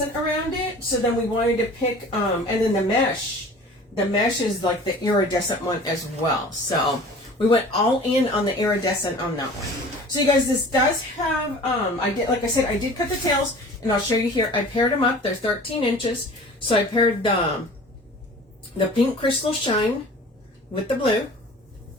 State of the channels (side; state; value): both; normal; correlation 0.44